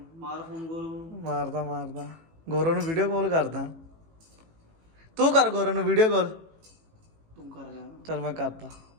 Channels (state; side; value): late; left; 18 ms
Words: ਮਾਰ ਫੋਨ ਗੋਰੂ ਨੂੰ। ਮਾਰਦਾ ਗੋਰੂ ਨੂੰ ਵੀਡੀਓ ਕਾਲ ਕਰਦਾ। ਤੂੰ ਕਰ ਗੋਰੂ ਨੂੰ ਵੀਡੀਓ ਕਾਲ। ਤੂੰ ਕਰ ਲੈ। ਚਲ ਮੈਂ ਕਰਦਾ।